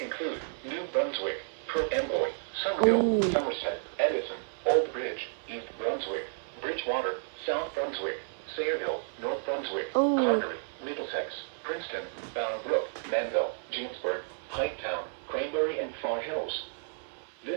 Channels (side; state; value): left; silent; 57 dB below the other